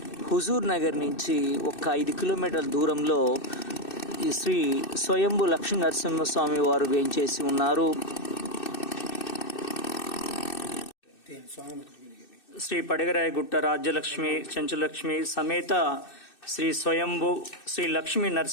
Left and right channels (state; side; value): late; right; 2.6 ms